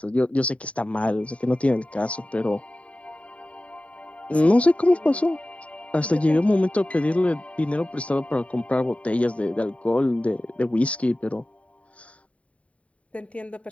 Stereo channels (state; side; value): late; right; 0.065 ms